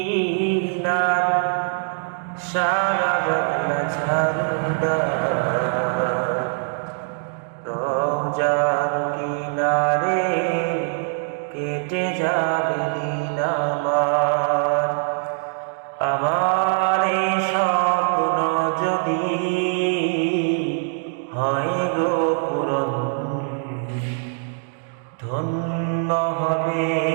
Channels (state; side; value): silent; left; 64 dB below the other